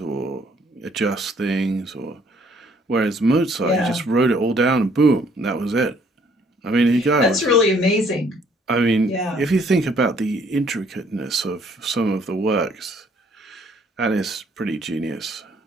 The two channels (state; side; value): normal; both; correlation 0.63